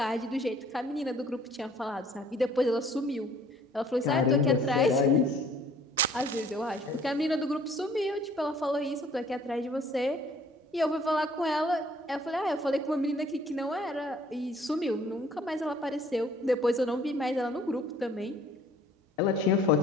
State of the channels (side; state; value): both; normal; correlation 0.57